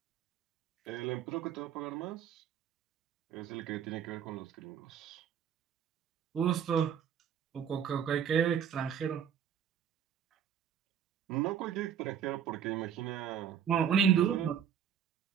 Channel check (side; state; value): left; quieter; 8.4 dB